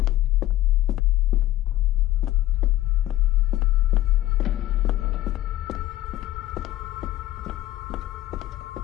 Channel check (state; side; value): quieter; right; 14.8 dB